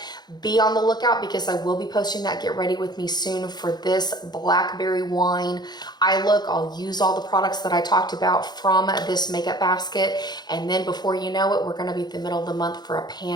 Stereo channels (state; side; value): late; right; 0.20 ms